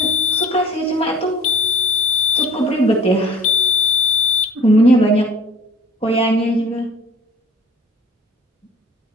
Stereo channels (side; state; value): both; normal; correlation 0.49